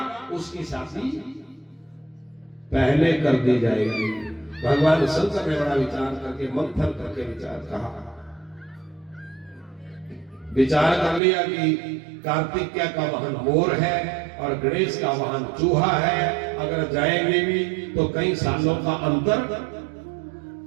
उसकी शादी पहले कर दी जाएगी। भगवान शंकर ने बड़ा विचार करके, मंथन करके विचार कर लिया कि कार्तिकेय का वाहन मोर है और गणेश का वाहन चूहा है। अगर जाएंगे भी तो कई सालों का अंतर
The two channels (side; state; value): left; drops out; at 11.2 s